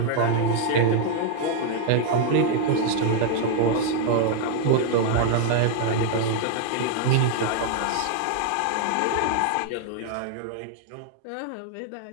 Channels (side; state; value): both; different; correlation 0.00